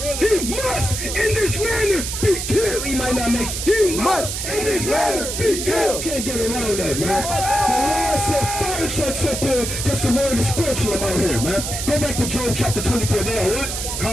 He must in this manner be killed. He might not make. He must in this manner be killed. Can't get around that, man. The Lord said fire trucks up here because the word is scorching them out here, man. Go back to Job chapter 24. There, what?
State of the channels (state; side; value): noise; right; hiss, 4 dB below the sound